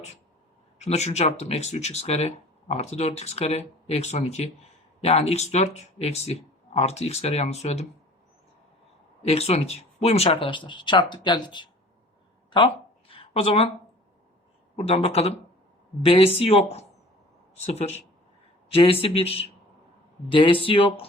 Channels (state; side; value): normal; both; correlation 0.47